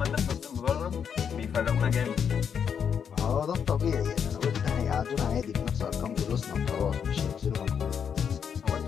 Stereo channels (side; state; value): right; quieter; 7.5 dB